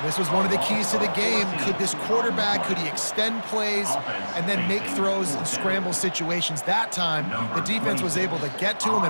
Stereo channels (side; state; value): both; inverted; correlation -1.00